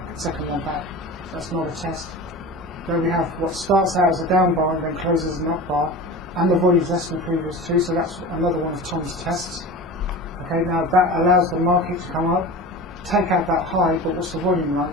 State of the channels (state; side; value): normal; both; correlation 0.32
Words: second one back. That's not a test. Then we have what starts out as a down bar and then closes as an up bar, and the volume is less than the previous two, so that's another one of Tom's tests. Okay, now that allows the market to come up, take out that high, but what's the volume